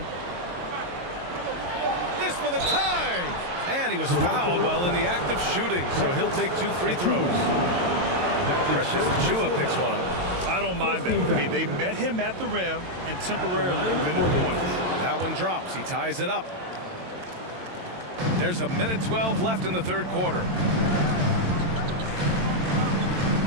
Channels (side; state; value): left; late; 22 ms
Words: This for the tie! And he was fouled while in the act of shooting, so he'll take 2 free throws. Precious Achua picks one up. I don't mind that. I mean, they met him at the rim and temporarily prevented the points. That one drops. He ties it up. There's a minute 12 left in the third quarter.